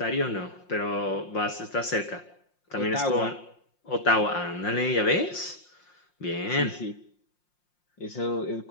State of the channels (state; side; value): late; right; 5.6 ms